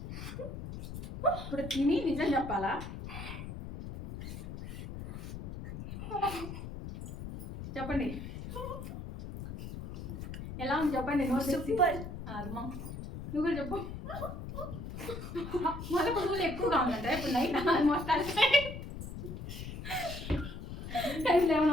ఇప్పుడు తిని నిజం చెప్పాలా? చెప్పండి ఎలా ఉంది చెప్పండి. సూపర్. అమ్మా నువ్వు కూడా చెప్పు. మళ్ళీ పువ్వులు ఎక్కువగా ఉందంటే ఇప్పుడు నైట్ ఆల్మోస్ట్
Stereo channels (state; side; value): noise; left; rumble, 8 dB below the sound